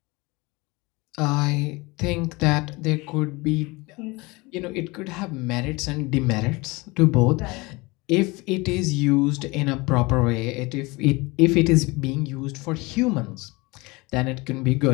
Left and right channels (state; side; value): quieter; right; 24.4 dB